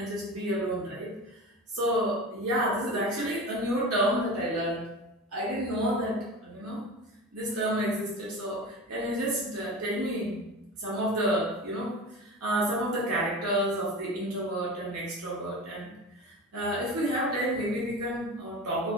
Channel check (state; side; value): normal; both; correlation 0.31